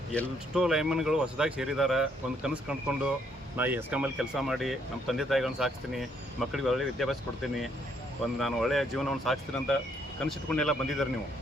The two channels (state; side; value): normal; both; correlation 0.70